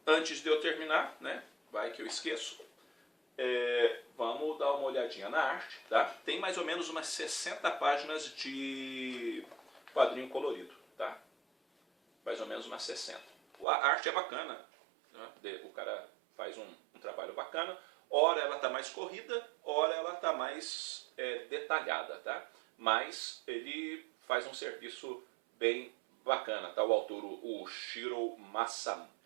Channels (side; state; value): left; drops out; at 13.7 s